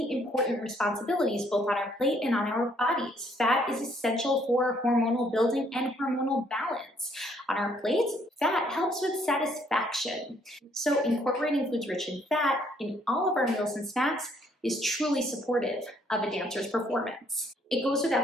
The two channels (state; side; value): normal; both; correlation 0.66